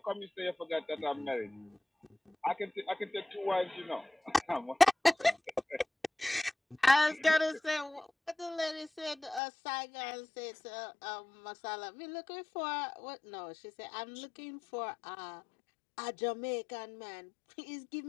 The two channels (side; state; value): right; drops out; at 9.4 s